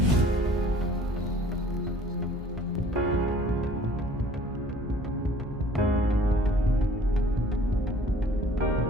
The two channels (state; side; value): normal; both; correlation 0.53